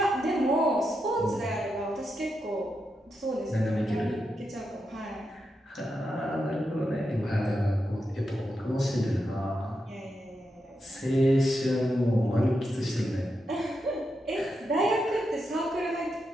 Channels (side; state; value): both; normal; correlation 0.86